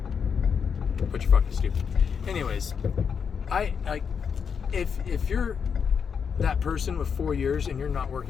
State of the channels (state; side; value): quieter; right; 6.6 dB